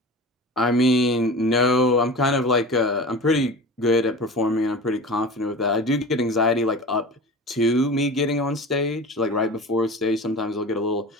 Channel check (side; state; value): both; normal; correlation 0.34